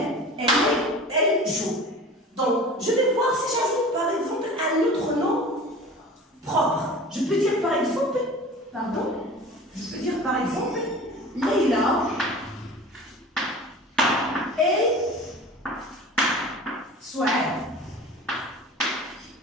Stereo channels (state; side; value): normal; both; correlation 0.39